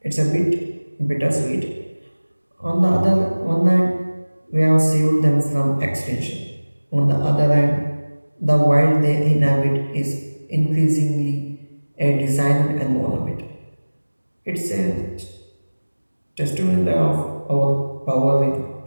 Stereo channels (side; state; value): both; inverted; correlation -1.00